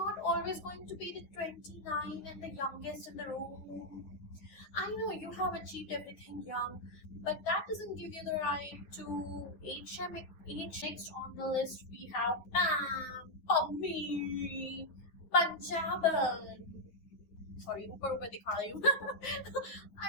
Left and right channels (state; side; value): late; right; 9.4 ms